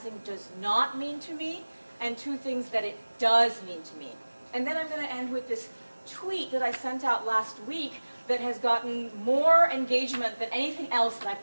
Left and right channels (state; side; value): inverted; both; correlation -1.00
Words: does not mean to me, and two things that it does mean to me. And then I'm going to end with this tweet that I sent out last week that has gotten more engagement than anything else that I've